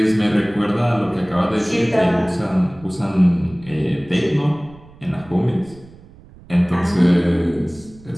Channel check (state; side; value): noise; right; rumble, 22 dB below the sound